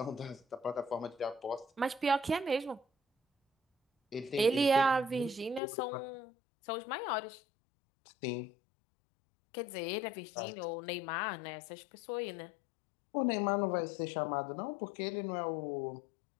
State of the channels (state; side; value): drops out; right; at 5.6 s